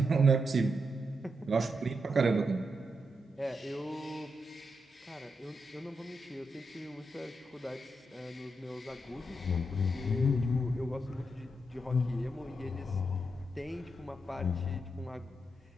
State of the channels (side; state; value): both; normal; correlation 0.83